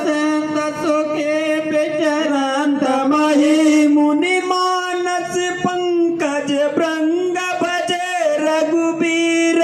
संत सुखे विचरंत मही मुनि मानस पंकज भृंग भजे रघुबीर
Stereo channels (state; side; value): identical; both; correlation 1.00